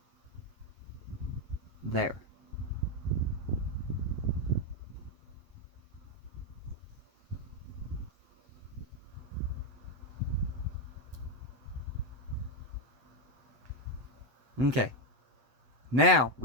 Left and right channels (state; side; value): late; left; 7.8 ms